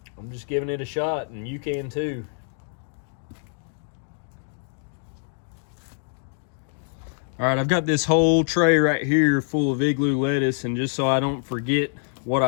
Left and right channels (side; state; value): right; silent; 62 dB below the other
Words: I'm just giving it a shot, and you can too. All right, I've got this whole tray right here full of igloo lettuce, and just so I don't forget what